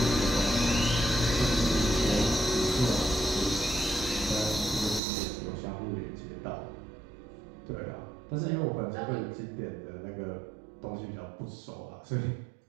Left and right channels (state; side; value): drops out; left; at 5.0 s